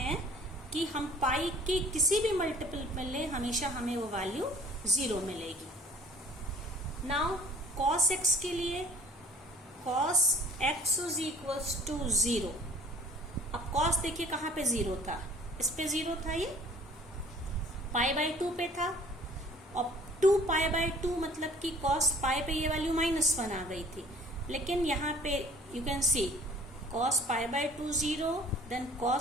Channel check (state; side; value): normal; both; correlation 0.51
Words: कि हम पाई की किसी भी मल्टीपल में लें, हमेशा हमें वो वैल्यू 0 मिलेगी. नाउ cos x के लिए cos x is equals to 0. अब cos देखिए कहाँ पे 0 था, इस पे 0 था, ये पाई बाई 2 पे था, और 2 पाई बाई 2 मतलब कि cos पाई पे ये वैल्यू -1 आ गई थी. लेकिन यहाँ पे you can see cos pi by 2 0, then